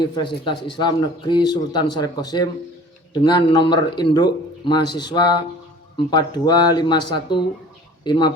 Islam Negeri Sultan Syarif Qasim, dengan nomor induk mahasiswa 4251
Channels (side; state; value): both; normal; correlation 0.46